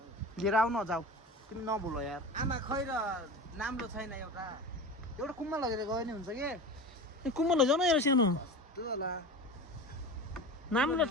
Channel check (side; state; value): both; normal; correlation 0.31